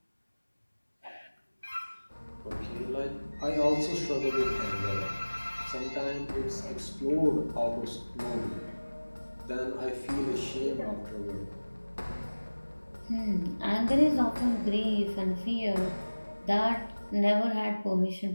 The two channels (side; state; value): both; inverted; correlation -1.00